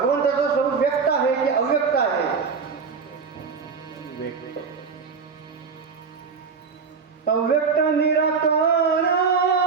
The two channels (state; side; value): quieter; left; 5.4 dB